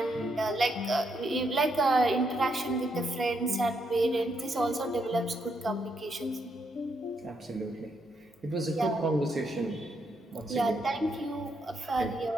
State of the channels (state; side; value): normal; both; correlation 0.78